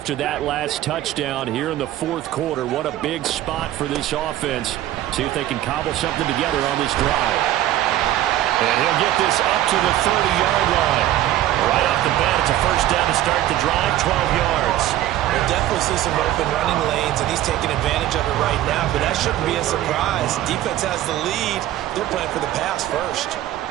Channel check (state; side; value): quieter; left; 13.6 dB